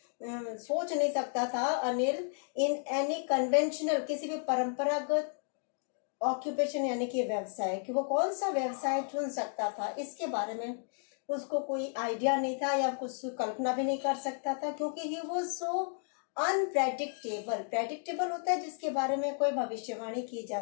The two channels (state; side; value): silent; right; 56 dB below the other